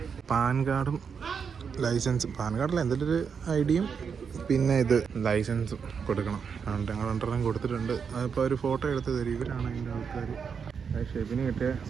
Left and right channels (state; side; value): quieter; left; 6.4 dB